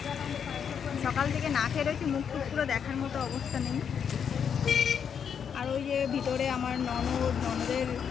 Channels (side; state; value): right; quieter; 7.5 dB